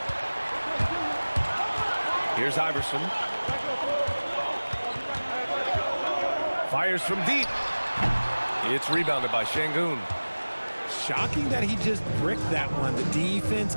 Here's Iverson. Fires from deep. It's rebounded by Şengün. Shocking that he just bricked that one. The defense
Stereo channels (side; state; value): both; inverted; correlation -1.00